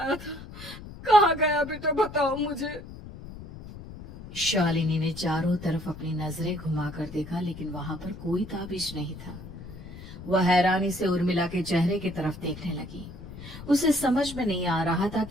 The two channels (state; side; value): noise; left; rumble, 14 dB below the sound